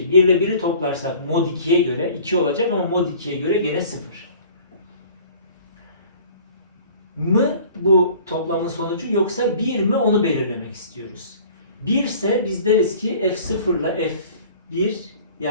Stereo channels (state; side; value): inverted; both; correlation -0.48